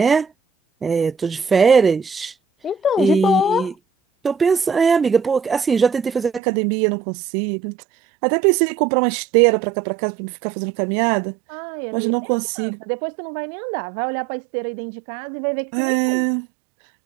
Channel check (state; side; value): drops out; left; at 6.4 s